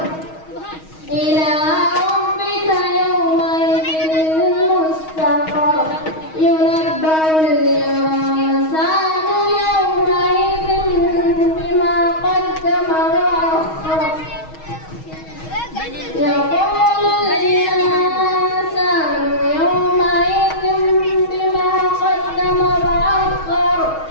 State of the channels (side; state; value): right; late; 6.3 ms